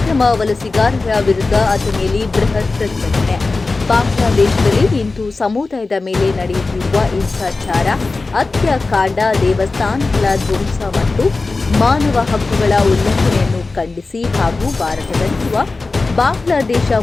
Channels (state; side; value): quieter; right; 3.7 dB